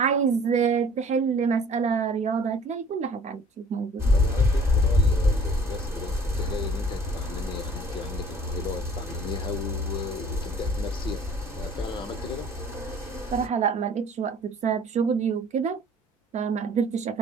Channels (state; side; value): normal; both; correlation 0.52